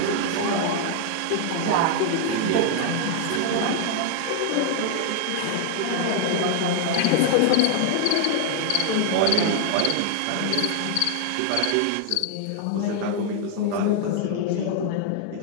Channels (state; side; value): different; both; correlation 0.00